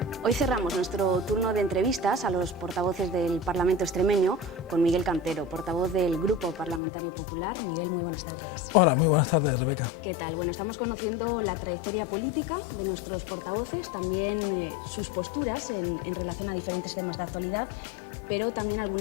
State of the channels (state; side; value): drops out; right; at 6.8 s